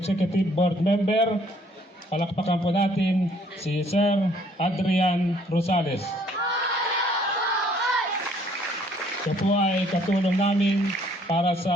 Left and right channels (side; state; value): both; normal; correlation 0.62